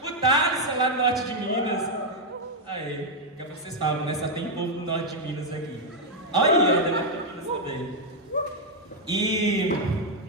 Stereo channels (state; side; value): normal; both; correlation 0.00